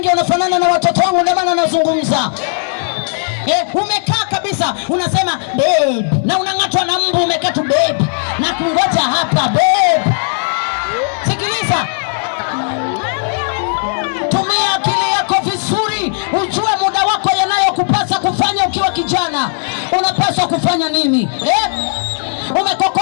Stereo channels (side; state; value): right; silent; digital silence